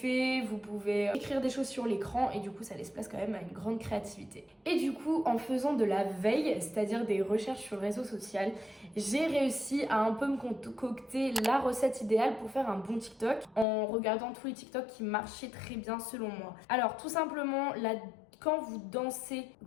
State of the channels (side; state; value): right; drops out; at 13.7 s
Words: vous pouvez écrire des choses sur l'écran et du coup ça laisse place quand même à une grande créativité. Et du coup, en faisant de la veille, c'est-à-dire des recherches sur le réseau social, j'ai réussi à un peu me concocter la recette idéale pour faire un bon TikTok en regardant tous les TikTok qui marchaient très bien selon moi. Alors tout simplement, quand vous dansez,